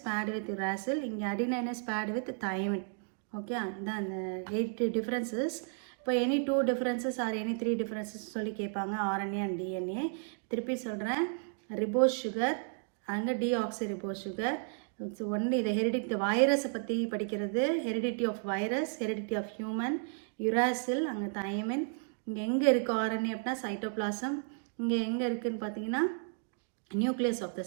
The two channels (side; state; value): left; silent; 56 dB below the other